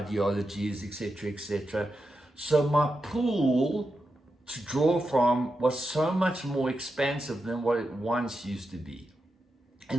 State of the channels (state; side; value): normal; both; correlation 0.88